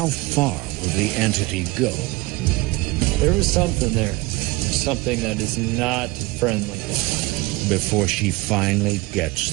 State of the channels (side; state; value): left; quieter; 22.0 dB